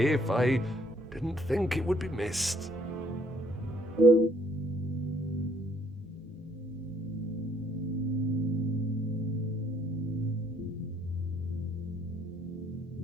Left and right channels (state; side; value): normal; both; correlation 0.64